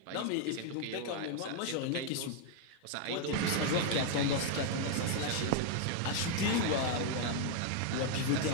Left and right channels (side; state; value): both; different; correlation 0.00